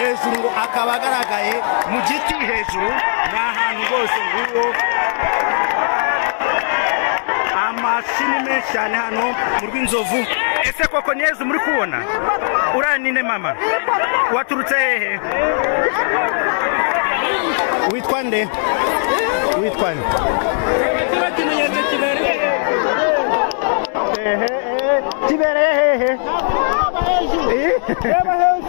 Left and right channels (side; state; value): right; silent; digital silence